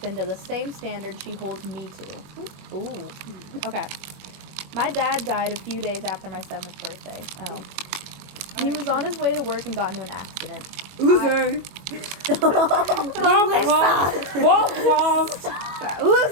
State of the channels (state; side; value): late; left; 21 ms